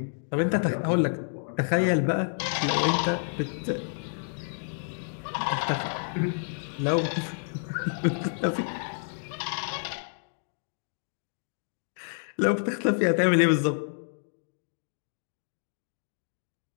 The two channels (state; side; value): silent; right; digital silence